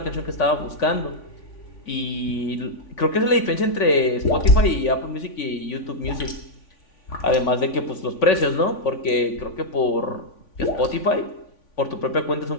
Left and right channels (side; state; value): right; late; 3.5 ms